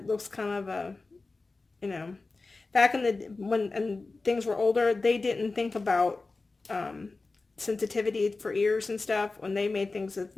looks kind of a, you know, back in when things were older, they didn't think about sensitivity for ears and stuff when they made things with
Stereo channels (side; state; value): right; quieter; 3.6 dB